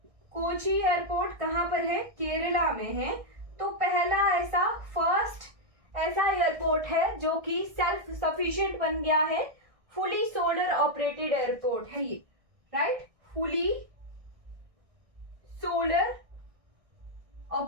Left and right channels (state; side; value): late; left; 1.6 ms